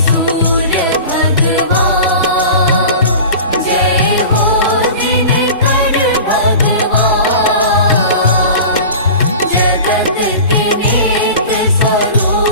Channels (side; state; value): both; inverted; correlation -0.36